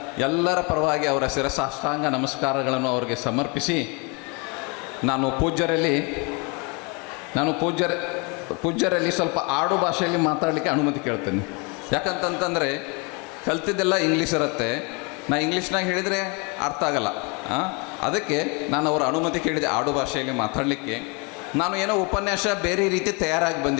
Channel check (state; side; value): quieter; right; 31.3 dB